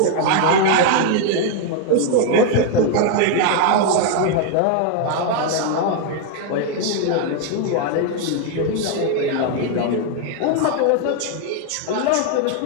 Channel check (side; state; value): both; different; correlation 0.00